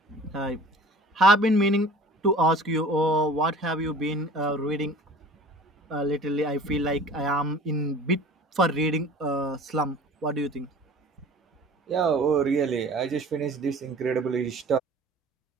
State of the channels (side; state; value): both; normal; correlation 0.45